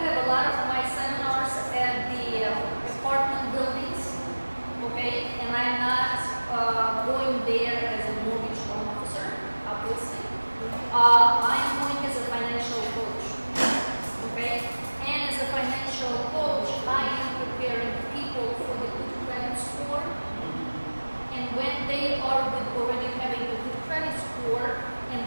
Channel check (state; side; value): inverted; both; correlation -1.00